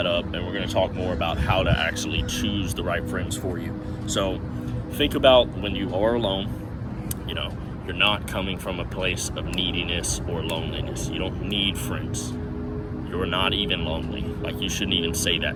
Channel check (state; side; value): identical; both; correlation 1.00